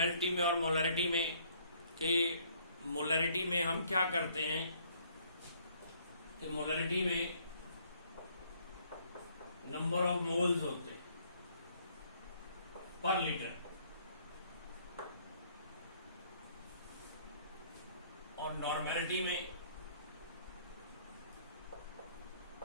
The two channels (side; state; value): both; inverted; correlation -0.63